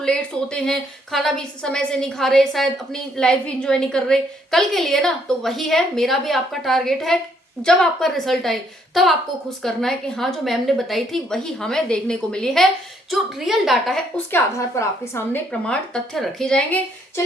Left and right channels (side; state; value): both; normal; correlation 0.69